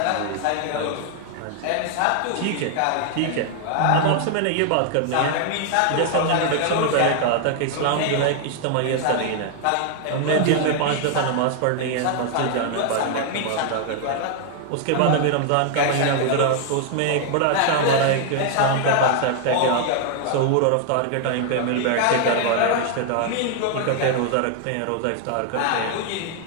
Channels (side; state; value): both; different; correlation 0.00